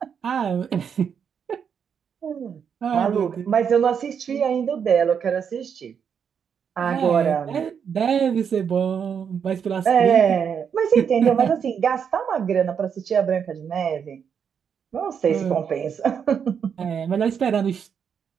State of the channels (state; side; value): quieter; left; 7.3 dB